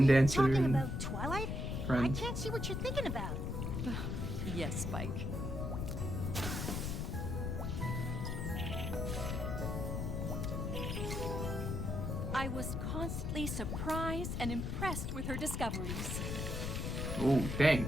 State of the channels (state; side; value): noise; left; rumble, 2 dB below the sound